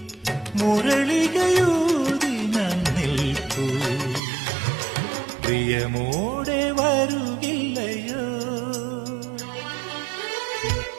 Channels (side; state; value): left; drops out; at 4.2 s